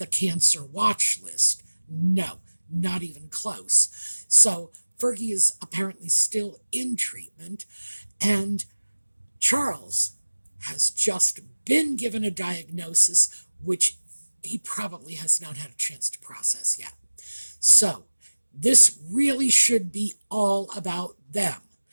cancer watch list. No, not even close. So Fergie is apparently still in treatment, and Charles has just been given a diagnosis which he probably has not had a chance to process yet. So this really should be all about them.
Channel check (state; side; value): inverted; both; correlation -1.00